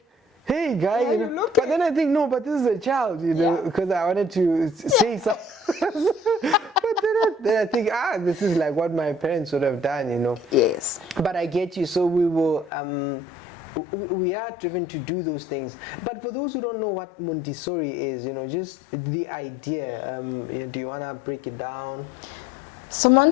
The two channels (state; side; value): drops out; right; at 12.7 s